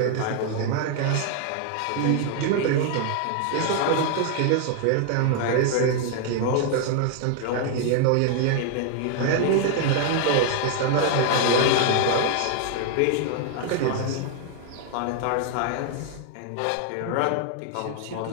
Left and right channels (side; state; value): both; different; correlation 0.00